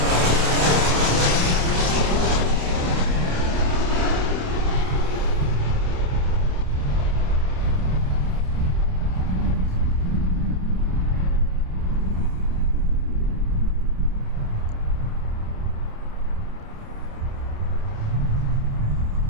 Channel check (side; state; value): left; late; 28 ms